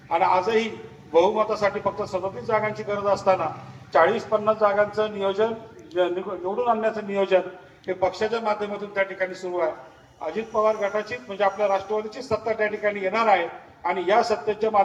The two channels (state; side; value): identical; both; correlation 1.00